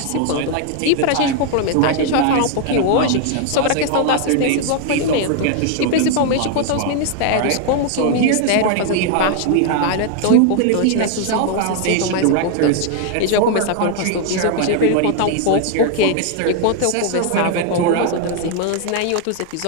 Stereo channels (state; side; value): different; both; correlation 0.00